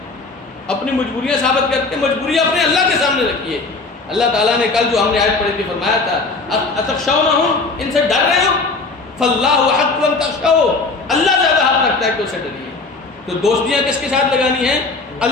اپنی مجبوریاں ثابت کرتے ہیں۔ مجبوریاں اپنے اللہ کے سامنے رکھیے۔ اللہ تعالیٰ نے کل جو ہم نے آیت پڑھی تھی فرمایا تھا اتخشونہم، ان سے ڈر رہے ہو، فاللہ حق ان تخشوا، اللہ زیادہ حق رکھتا ہے کہ اسے ڈریے۔ تو دوستیاں کس کے ساتھ لگانی ہیں؟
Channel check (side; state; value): right; quieter; 3.7 dB